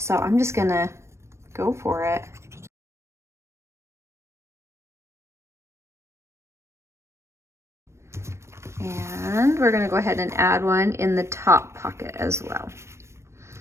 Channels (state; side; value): late; left; 0.13 ms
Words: I'm just gonna go for it. And we're gonna go ahead and add one in the top pocket as well.